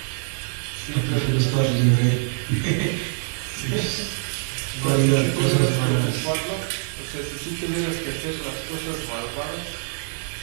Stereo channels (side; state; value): left; silent; 60 dB below the other